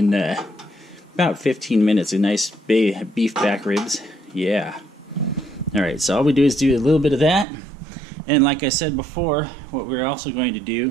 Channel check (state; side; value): drops out; left; at 7.5 s